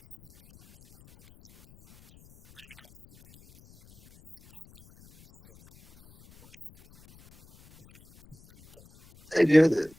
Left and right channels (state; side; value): noise; left; rumble, 29 dB below the sound